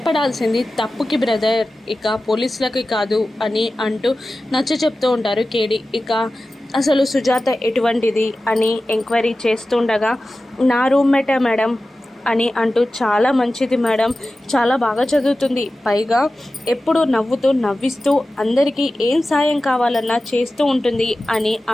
తప్పుకి బ్రదర్, ఇక పోలీసులకి కాదు అని అంటూ నచ్చ చెప్తూ ఉంటారు కేడీ. ఇక అసలు సుజాత ఎటువంటిది అని ఎంక్వైరీ చేస్తుండగా, నా రూమ్మేటే మేడం అని అంటూ, చాలా మంచిది మేడం, చాలా బాగా చదువుతుంది, పైగా ఎప్పుడు నవ్విస్తూ అందరికీ ఏం సాయం కావాలన్నా చేస్తూ ఉంటుంది అని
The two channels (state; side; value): normal; both; correlation 0.95